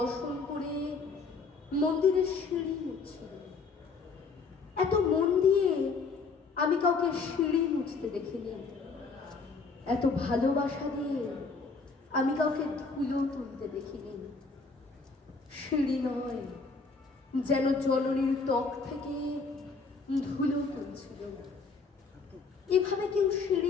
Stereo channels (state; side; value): quieter; right; 4.5 dB